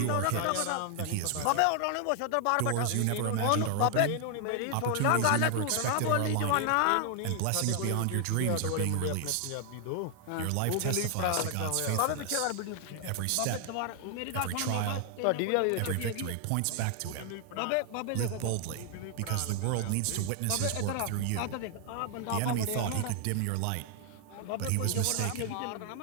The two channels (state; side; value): different; both; correlation 0.00